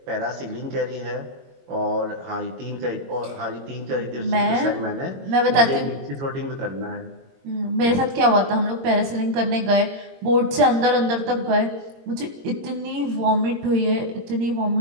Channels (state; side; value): late; left; 22 ms